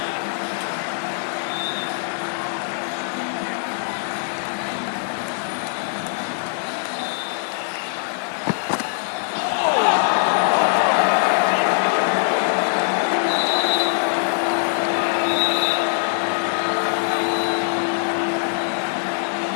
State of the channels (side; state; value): right; silent; digital silence